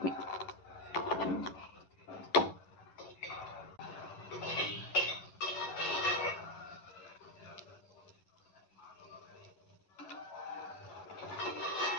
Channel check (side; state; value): right; late; 11 ms